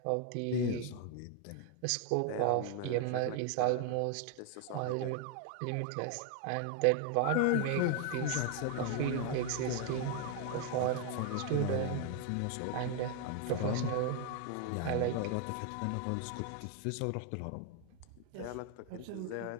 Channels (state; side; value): different; both; correlation 0.01